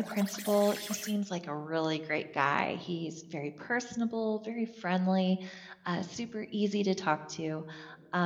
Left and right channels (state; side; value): identical; both; correlation 1.00